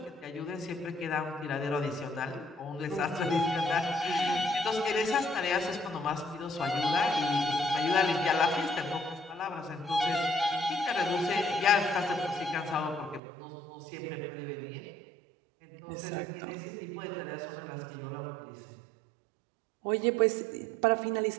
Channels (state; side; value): drops out; left; at 13.2 s